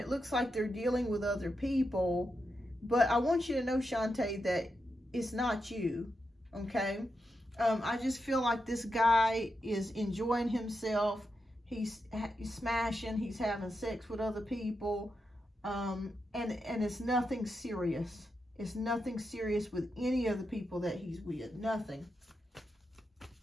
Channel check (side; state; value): both; normal; correlation 0.86